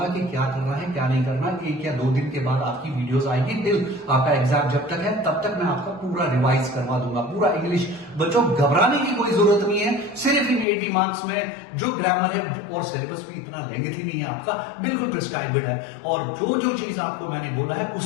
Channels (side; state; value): right; drops out; at 10.7 s